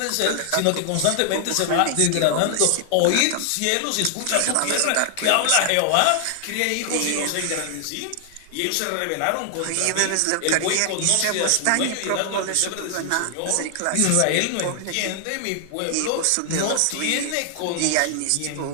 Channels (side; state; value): both; different; correlation 0.00